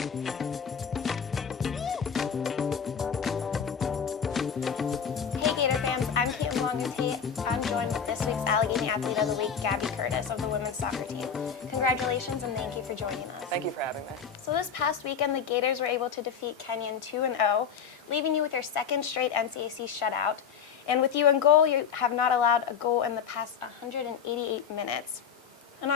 joined with this week's Allegheny Athlete of the Week, Gabby Curtis of the women's soccer team. Congratulations and thank you for joining us. Thank you for having me. So this past weekend, the Gators were able to defeat Kenyon 2-0, leaving you with your second straight NCAC shutout. And with you in goal, you have not allowed a goal in the past 188 minutes. And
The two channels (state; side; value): quieter; right; 6.9 dB